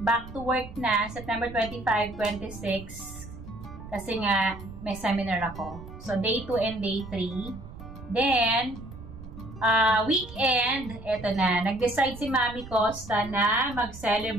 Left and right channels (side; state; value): right; noise; rumble, 14 dB below the sound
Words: Back to work na, September 25, 26. Kasi nga, may seminar ako. So day 2 and day 3. Then, weekend, eto na. Nag-decide si Mami Costa na